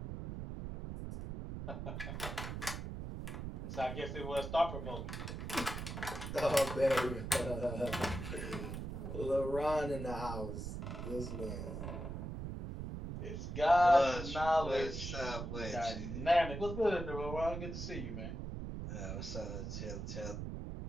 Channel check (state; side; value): noise; right; rumble, 6 dB below the sound